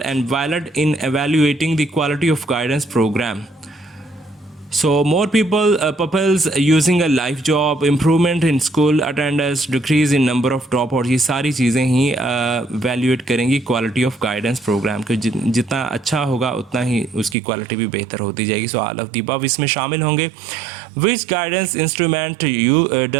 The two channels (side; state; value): left; drops out; at 17.4 s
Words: and valid in evaluating the quality of guidance programme, so more peoples using a life job, improvement in school attendance, decrease in number of drop out, ये सारी चीज़ें ही evaluate करेंगी quality of guidance programme के। जितना अच्छा होगा उतना ही उसकी क्वालिटी भी बेहतर होती जाएगी। So all of the above इसमें शामिल होंगे। Which guidance instrument you